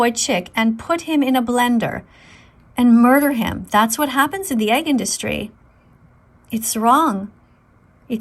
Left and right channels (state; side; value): identical; both; correlation 1.00